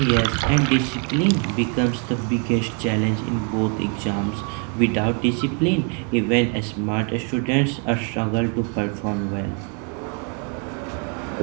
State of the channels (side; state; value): left; quieter; 39.0 dB